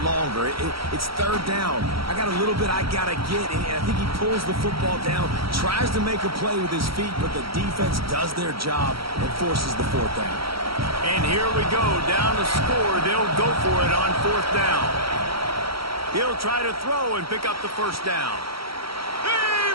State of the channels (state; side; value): late; left; 0.75 ms